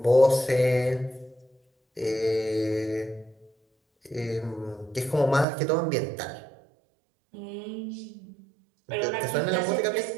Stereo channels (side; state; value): left; drops out; at 5.5 s